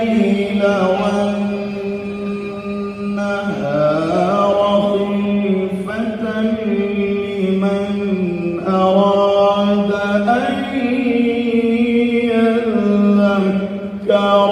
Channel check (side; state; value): both; identical; correlation 1.00